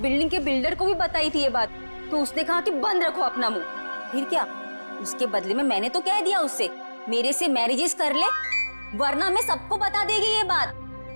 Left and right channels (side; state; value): both; inverted; correlation -1.00